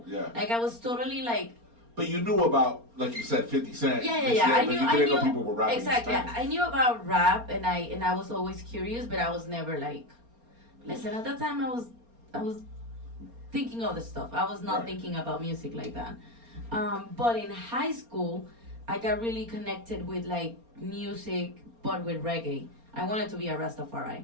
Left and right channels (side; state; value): left; late; 4.3 ms